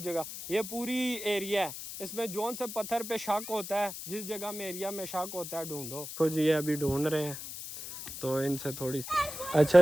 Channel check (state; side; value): noise; left; hiss, 9 dB below the sound